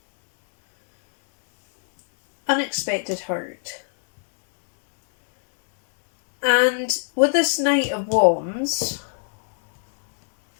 Unexpected hurt. And with this Knight of Wands,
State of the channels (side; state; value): right; silent; 65 dB below the other